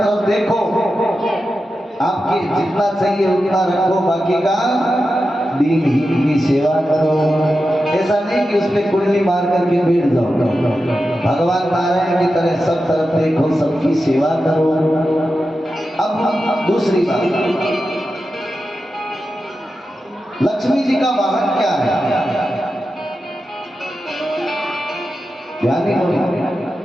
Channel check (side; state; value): both; normal; correlation 0.91